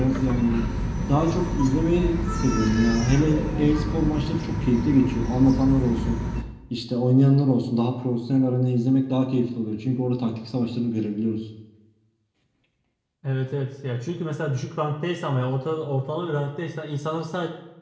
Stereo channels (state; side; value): identical; both; correlation 1.00